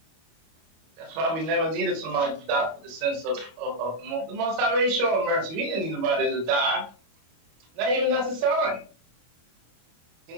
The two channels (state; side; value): late; left; 25 ms